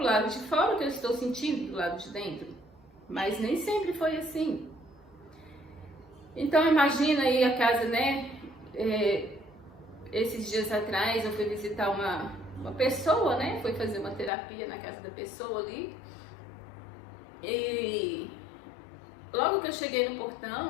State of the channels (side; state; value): right; drops out; at 14.3 s